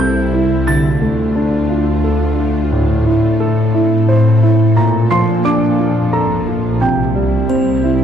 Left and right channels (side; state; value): both; normal; correlation 0.73